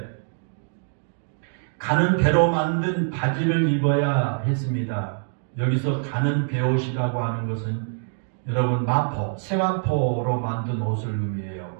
가는 배로 만든 바지를 입어야 했습니다. 여기서 가는 베옷이라고 하는 것은 여러분 마포, 세마포로 만든 옷을 의미해요.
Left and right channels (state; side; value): silent; left; digital silence